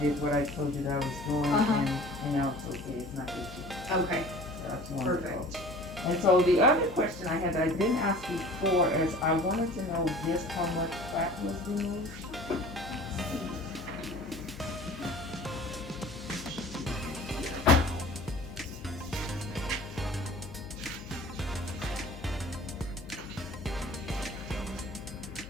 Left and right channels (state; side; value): noise; left; hum, 14 dB below the sound